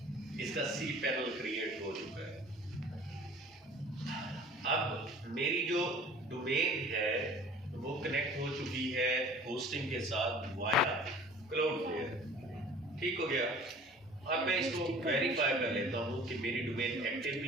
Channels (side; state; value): both; normal; correlation 0.47